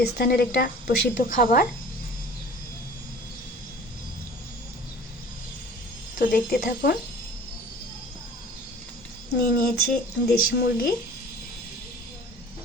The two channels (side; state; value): both; normal; correlation 0.45